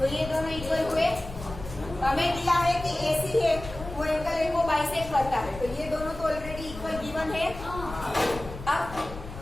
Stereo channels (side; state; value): left; noise; rumble, 12 dB below the sound